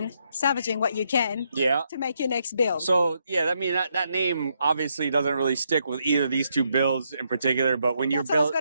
salvaging what you can, yeah, to make your next build. So yeah, I mean that name obviously doesn't really stick with either of these two builds in particular. But when you're I was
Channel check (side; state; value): both; inverted; correlation -0.77